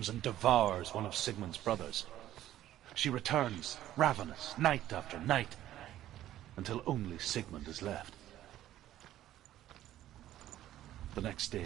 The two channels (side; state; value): left; quieter; 13.1 dB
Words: and devours one of Sigmund's brothers. She returns, ravenous, night after night, until only Sigmund is left. The next